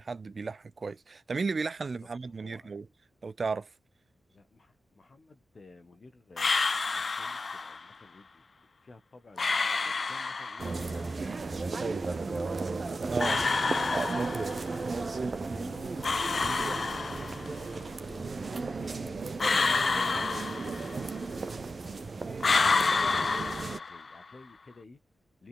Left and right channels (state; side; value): normal; both; correlation 0.91